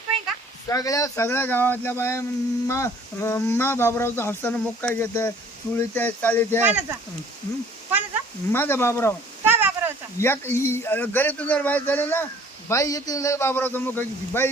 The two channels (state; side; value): normal; both; correlation 0.54